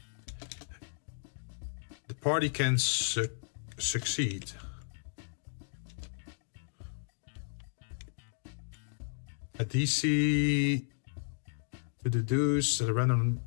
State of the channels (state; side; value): silent; right; digital silence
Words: the party can succeed. A DC to deduce that a random